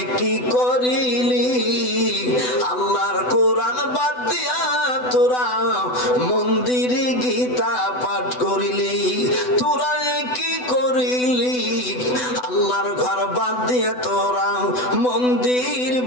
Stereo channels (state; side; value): late; right; 8.0 ms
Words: কি করিলি আল্লাহর কোরআন বাদ দিয়া তোরা মন্দিরে গীতা পাঠ করিলি, তোরা কি করিলি আল্লাহর ঘর বাদ দিয়ে তোরা মন্দির